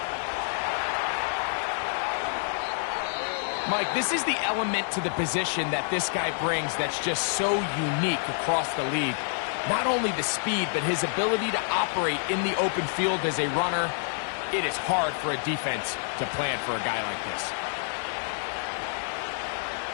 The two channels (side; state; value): right; silent; 56 dB below the other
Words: Mike, this is the element to the position that this guy brings that's just so unique across the league. Not only the speed, but his ability to operate in the open field as a runner. It is hard for a defense to plan for a guy like this.